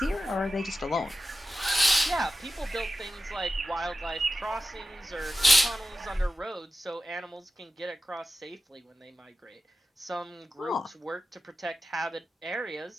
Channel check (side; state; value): both; normal; correlation 0.93